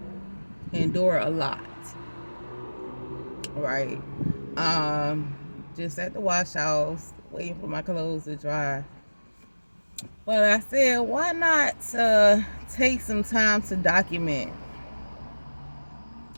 endure a lot, right? Just at the wash house, waiting for my clothes to dry. But I said, why not take some time to document?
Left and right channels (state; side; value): inverted; both; correlation -1.00